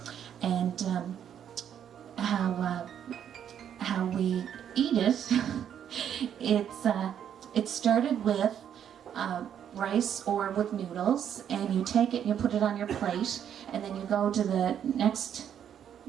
and how we eat it. It started with rice or with noodles, and you take it and you put it on your plate, and then you go to the next.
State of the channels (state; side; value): quieter; left; 9.2 dB